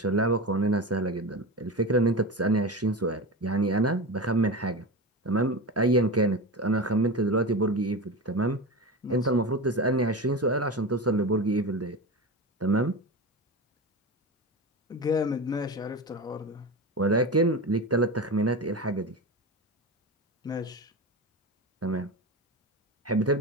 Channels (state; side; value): normal; both; correlation 0.24